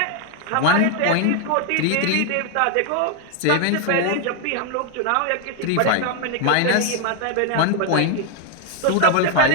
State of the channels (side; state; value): both; different; correlation 0.00